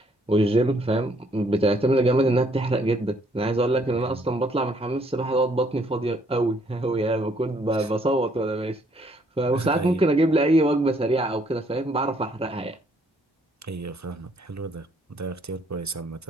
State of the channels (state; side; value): normal; both; correlation 0.67